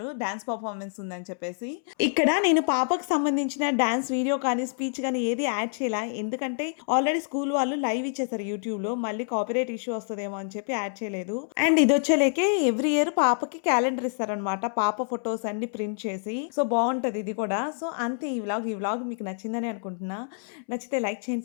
డాన్స్ పర్ఫార్మెన్స్ ఉందని చెప్పేసి. ఇక్కడ నేను పాపకు సంబంధించిన డాన్స్ వీడియో కానీ స్పీచ్ కానీ ఏది యాడ్ చేయాల, ఎందుకంటే ఆల్రెడీ స్కూల్ వాళ్ళు లైవ్ ఇచ్చేసారు యూట్యూబ్ లో, మళ్ళీ కాపీరైట్ ఇష్యూ వస్తుందేమో అని చెప్పి యాడ్ చేయలేదు. అండ్ ఇది వచ్చేలేకే ఎవ్రీ ఇయర్ పాపకి క్యాలెండర్ ఇస్తారనమాట, పాప ఫొటోస్ అన్ని ప్రింట్ చేసి. సో బాగుంటది ఇది కూడా. సో అంతే ఈ వ్లాగ్ మీకు నచ్చిందని అనుకుంటున్నా. నచ్చితే లైక్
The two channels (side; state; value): right; silent; 60 dB below the other